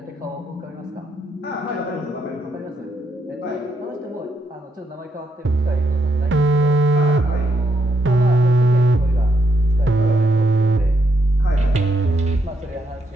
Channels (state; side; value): normal; both; correlation 0.78